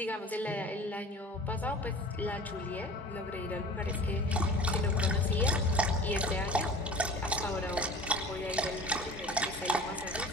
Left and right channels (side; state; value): both; normal; correlation 0.41